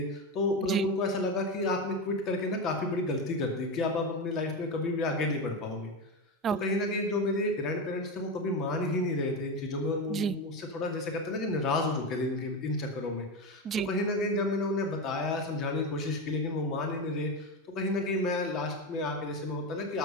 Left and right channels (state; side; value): normal; both; correlation 0.17